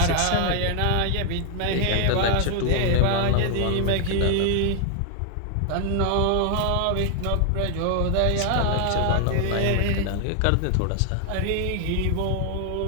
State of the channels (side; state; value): both; different; correlation 0.00